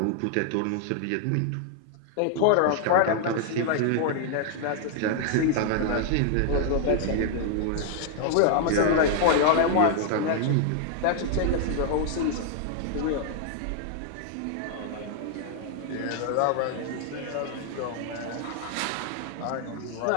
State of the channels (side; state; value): both; different; correlation 0.00